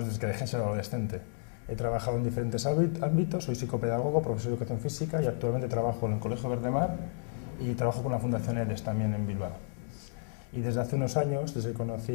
desde que dejé de ser adolescente. He trabajado en diferentes ámbitos, soy psicopedagogo, profesor de educación física y actualmente trabajo en el Colegio Verdemar y trabajo con la Fundación EDES también en Bilbao. Y desde hace unos años, desde que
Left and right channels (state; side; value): silent; right; digital silence